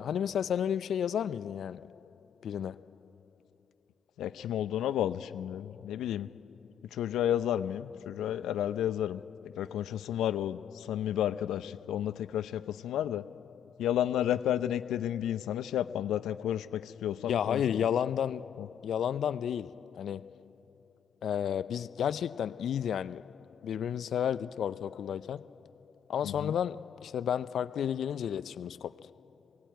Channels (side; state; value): right; quieter; 9.6 dB